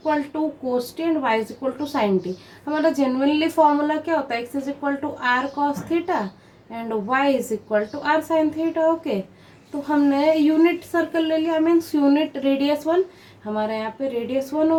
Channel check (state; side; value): identical; both; correlation 1.00